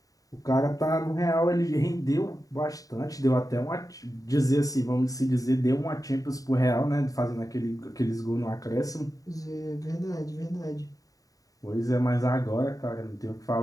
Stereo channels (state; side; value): late; right; 0.17 ms